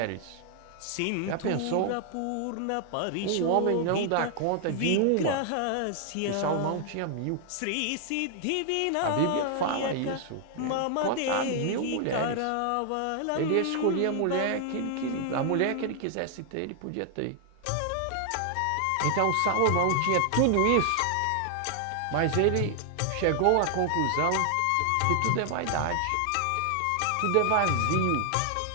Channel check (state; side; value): different; both; correlation 0.00